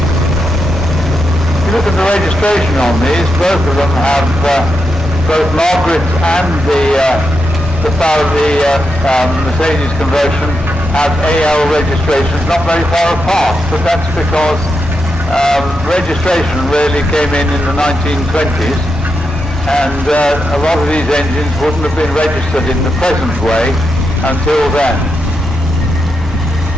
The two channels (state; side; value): normal; both; correlation 0.85